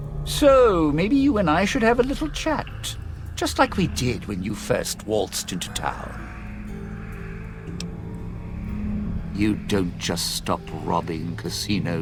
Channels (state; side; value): identical; both; correlation 1.00